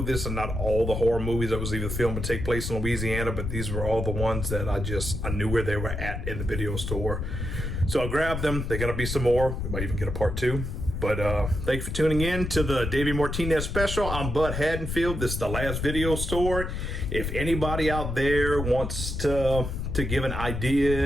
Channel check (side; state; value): left; noise; rumble, 4 dB below the sound